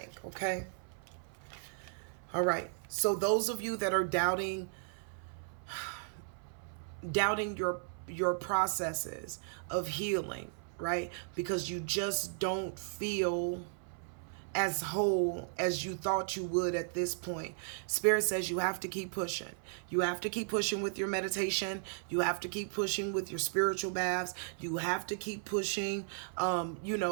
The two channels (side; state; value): left; silent; 54 dB below the other